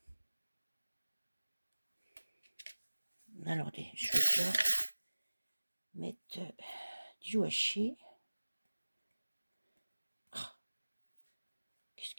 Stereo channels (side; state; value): both; inverted; correlation -1.00